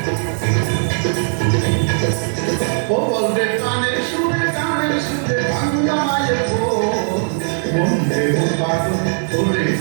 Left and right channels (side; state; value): left; silent; 67 dB below the other